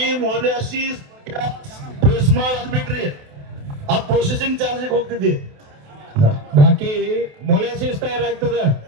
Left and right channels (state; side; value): late; left; 28 ms